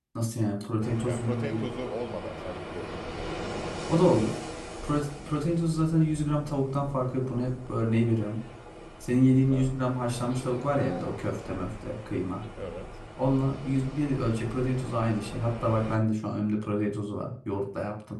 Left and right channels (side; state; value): both; identical; correlation 1.00